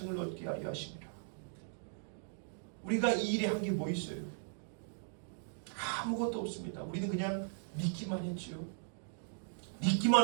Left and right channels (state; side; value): silent; left; digital silence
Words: 얻게 하려 하심이라. 우리가 이 일에 한 게 뭐 있어요? 아무것도 없습니다. 우리는 그냥 믿기만 했지요.